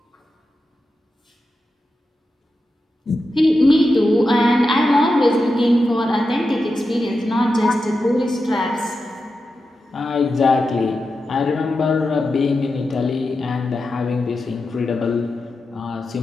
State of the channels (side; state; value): both; normal; correlation 0.90